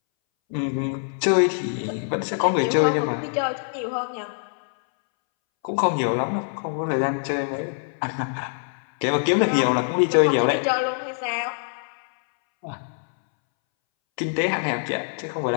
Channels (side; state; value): right; silent; 62 dB below the other